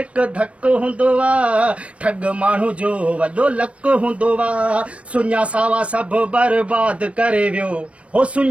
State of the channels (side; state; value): left; late; 0.062 ms